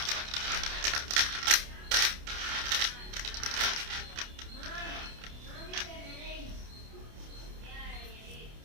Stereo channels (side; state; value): left; late; 28 ms